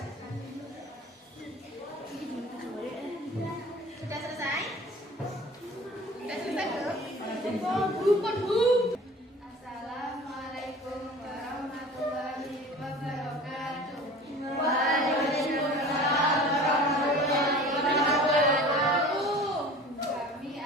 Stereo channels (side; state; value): both; normal; correlation 0.42